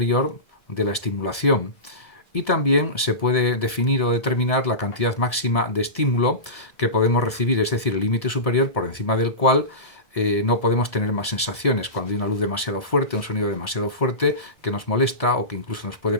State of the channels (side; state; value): right; late; 1.7 ms